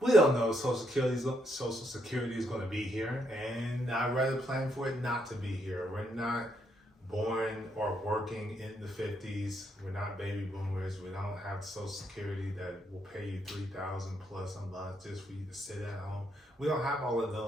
don't know Social Security is going to be here, and I'd rather plan for it not to be here. We're not born or working in the 50s. We're not baby boomers. We don't have Social Security that will pay you $3,000 plus a month just for you to sit at home. We don't have all of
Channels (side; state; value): both; normal; correlation 0.76